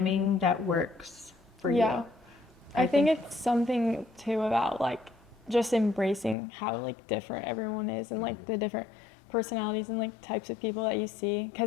that works for Yeah. you. I think it's something too about like just embracing how like different everyone is, and like the different personalities and like types of people that you see,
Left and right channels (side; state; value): right; drops out; at 6.4 s